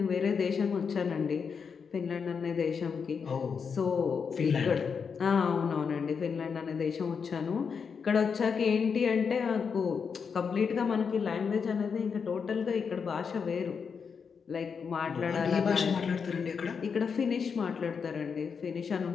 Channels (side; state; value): right; quieter; 6.1 dB